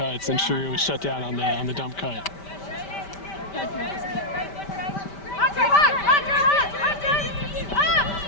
and Shrew was shut down on the dump cut.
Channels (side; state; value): right; late; 5.1 ms